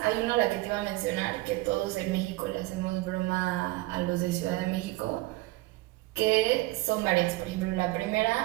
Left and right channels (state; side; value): quieter; left; 20.1 dB